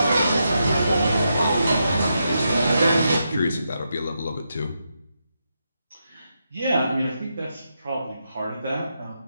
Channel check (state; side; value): inverted; both; correlation -0.84